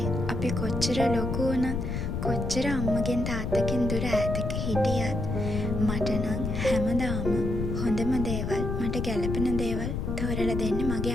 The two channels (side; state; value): left; noise; rumble, 2 dB below the sound